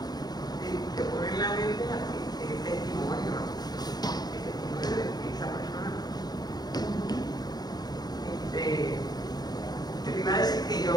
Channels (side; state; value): right; late; 0.19 ms